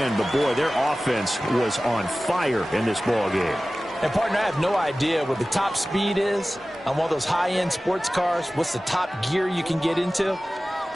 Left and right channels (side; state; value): both; normal; correlation 0.96